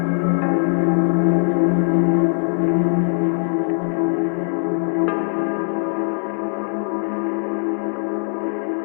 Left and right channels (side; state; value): right; silent; digital silence